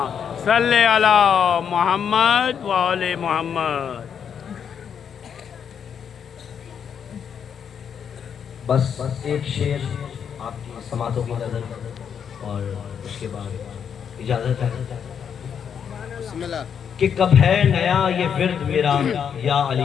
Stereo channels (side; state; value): right; quieter; 7.7 dB